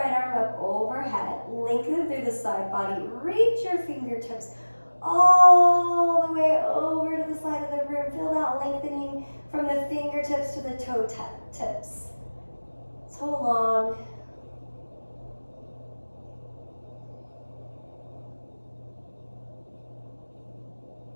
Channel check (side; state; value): both; inverted; correlation -1.00